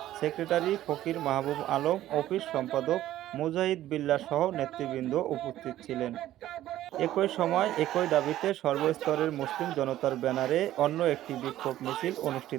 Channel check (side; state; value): left; quieter; 13.6 dB